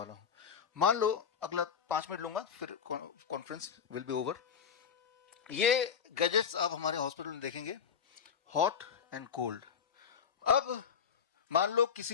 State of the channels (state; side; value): quieter; right; 7.2 dB